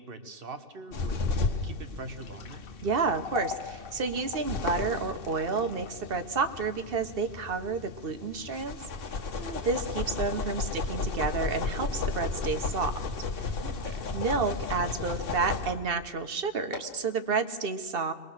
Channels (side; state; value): left; late; 2.7 ms